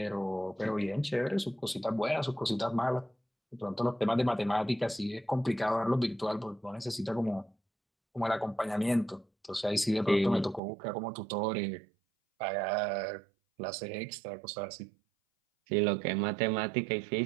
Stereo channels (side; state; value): left; drops out; at 10.6 s